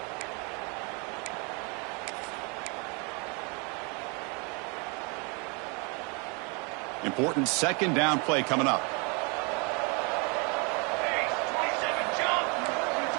Important second down play coming up.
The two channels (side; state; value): left; quieter; 32.6 dB